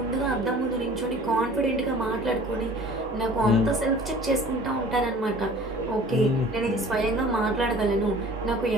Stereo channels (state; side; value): normal; both; correlation 0.47